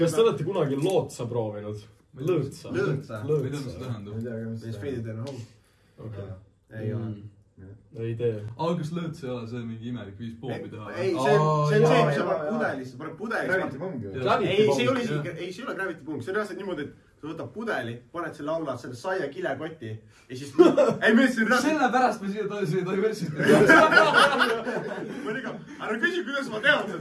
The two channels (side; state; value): both; identical; correlation 1.00